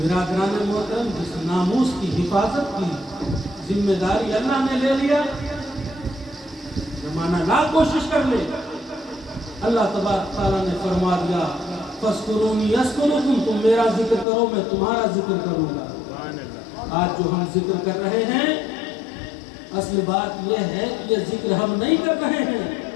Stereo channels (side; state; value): right; drops out; at 14.2 s